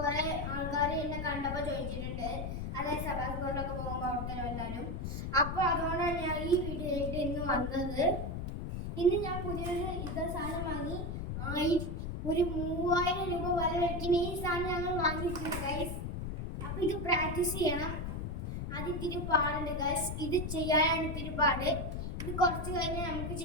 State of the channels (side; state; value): left; noise; rumble, 4 dB below the sound